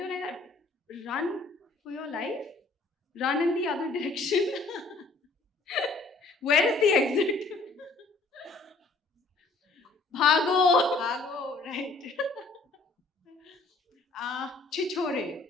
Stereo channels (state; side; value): quieter; right; 3.5 dB